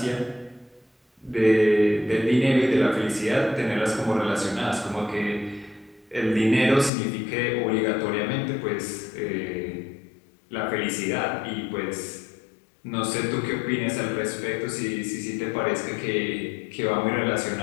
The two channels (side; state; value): right; drops out; at 6.9 s